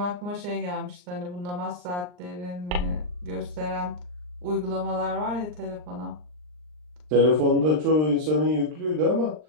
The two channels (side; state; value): left; late; 39 ms